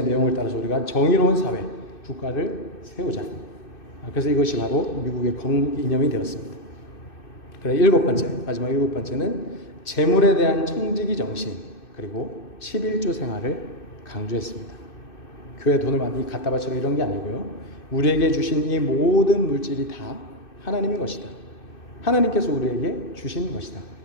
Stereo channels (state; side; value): late; right; 2.6 ms